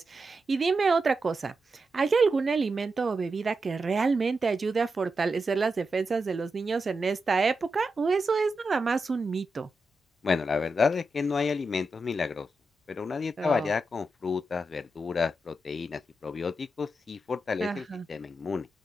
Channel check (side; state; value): both; normal; correlation 0.88